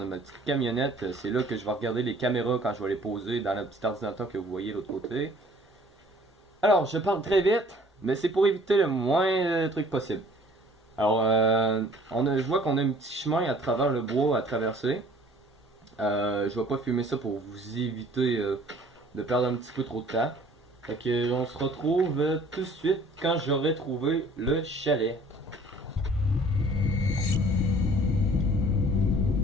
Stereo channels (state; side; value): normal; both; correlation 0.53